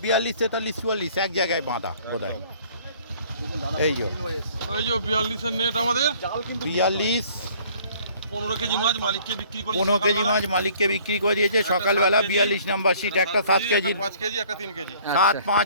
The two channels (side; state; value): both; inverted; correlation -0.55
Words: 42 43 44 এক জায়গায় বাঁধা বোধহয়। এই যে ওই যে 42-এর নেট আমাদের 42 15 কেজি মাছ মালিককে বিক্রি করি। 15 কেজি মাছ মালিককে বিক্রি করে দিয়েছে সকালবেলা। 42 নাম্বার সিট, একটা 7 কেজি, 5 কেজি একটা 3 কেজি। 7